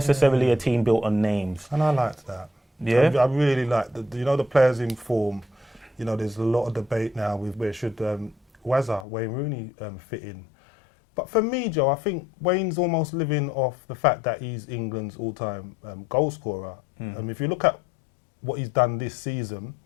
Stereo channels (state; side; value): drops out; right; at 9.1 s